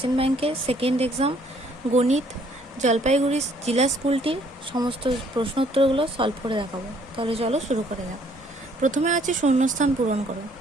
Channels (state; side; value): normal; both; correlation 0.63